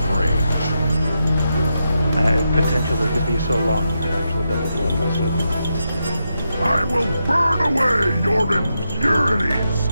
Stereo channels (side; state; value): both; inverted; correlation -0.85